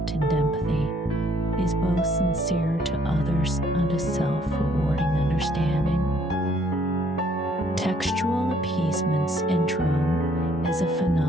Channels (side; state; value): both; normal; correlation 0.64